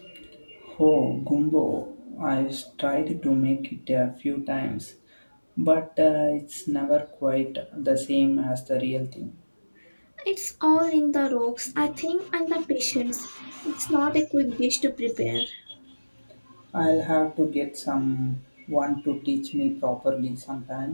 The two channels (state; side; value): inverted; both; correlation -1.00